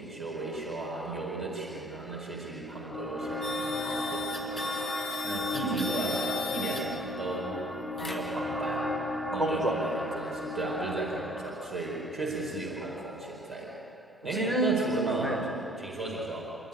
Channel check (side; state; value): both; normal; correlation 0.55